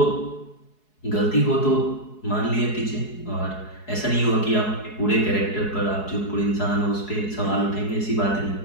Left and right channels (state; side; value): late; right; 4.7 ms